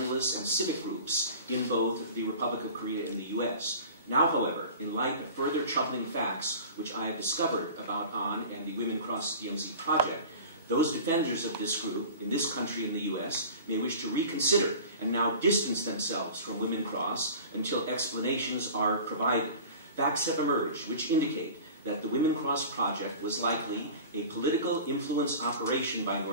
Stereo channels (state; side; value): inverted; both; correlation -0.39